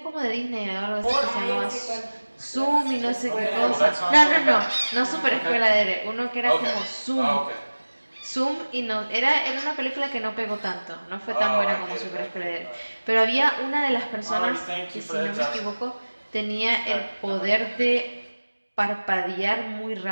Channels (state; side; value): inverted; both; correlation -1.00